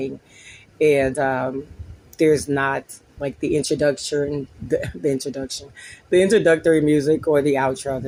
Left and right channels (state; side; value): identical; both; correlation 1.00